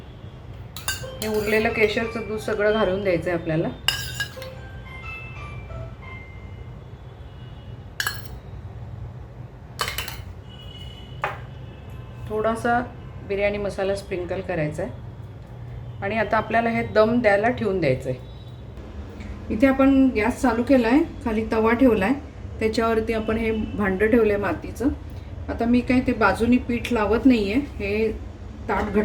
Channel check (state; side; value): identical; both; correlation 1.00